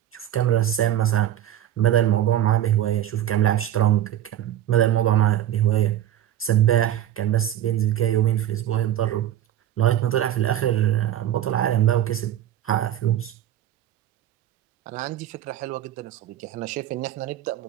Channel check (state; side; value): quieter; left; 11.7 dB